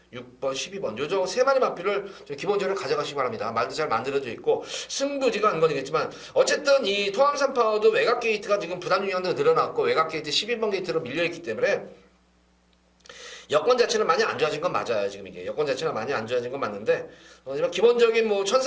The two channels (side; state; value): both; identical; correlation 1.00